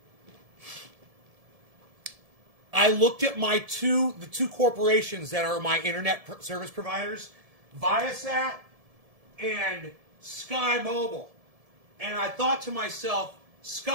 I looked at the two corporations that are my internet service providers, Viasat and Sky Mobile. And I thought to myself,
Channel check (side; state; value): left; late; 1.7 ms